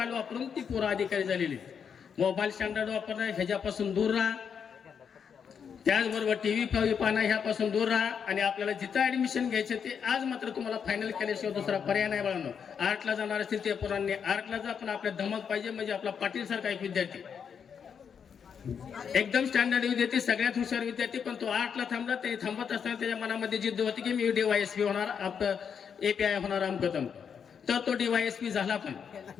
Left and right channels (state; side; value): quieter; right; 7.1 dB